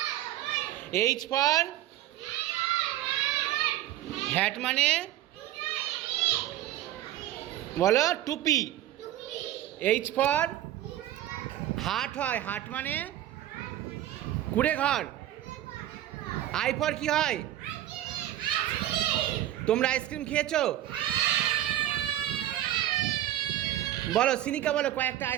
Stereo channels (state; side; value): quieter; left; 13.2 dB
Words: এইচ ফর হ্যাট মানে বলো টুপি এইচ ফর হাট হয় হাট মানে কুড়ে ঘর আই ফর কি হয় তোমরা আইসক্রিম খেয়েছো বলো সিনিকা বলো কয়েকটা